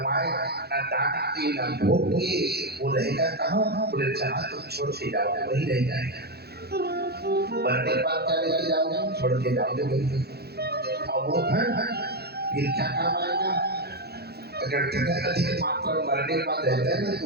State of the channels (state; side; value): late; left; 0.47 ms